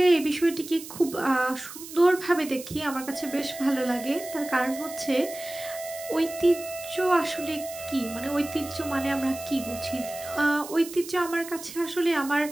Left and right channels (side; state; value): right; noise; hiss, 13 dB below the sound